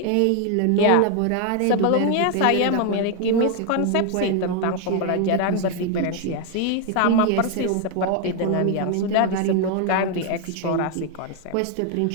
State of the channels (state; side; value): different; both; correlation 0.01